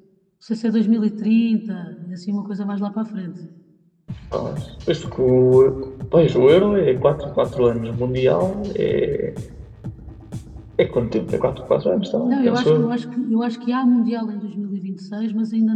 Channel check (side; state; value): both; identical; correlation 1.00